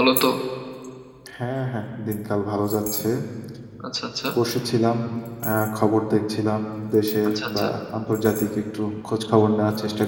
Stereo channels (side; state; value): both; identical; correlation 1.00